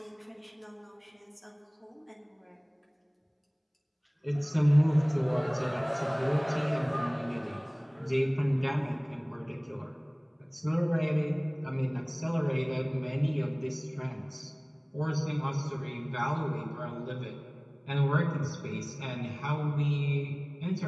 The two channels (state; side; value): identical; both; correlation 1.00